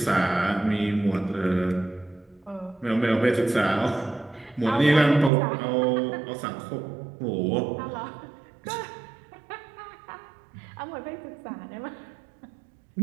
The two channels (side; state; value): left; drops out; at 5.3 s